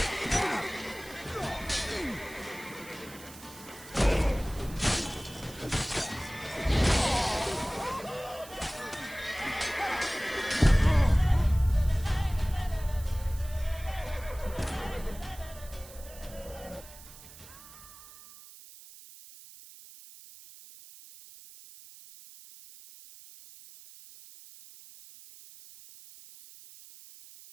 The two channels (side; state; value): right; noise; hiss, 18 dB below the sound